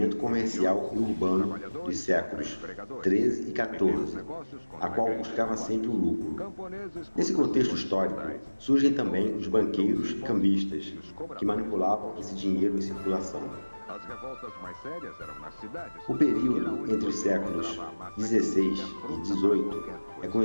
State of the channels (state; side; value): inverted; both; correlation -1.00